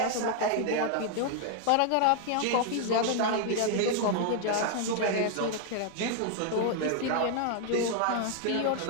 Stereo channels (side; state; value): both; different; correlation 0.00